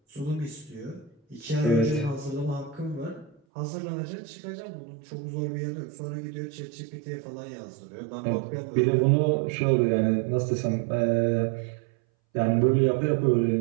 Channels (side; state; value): left; drops out; at 3.4 s